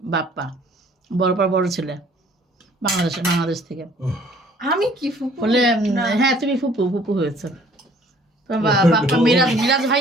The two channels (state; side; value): normal; both; correlation 0.56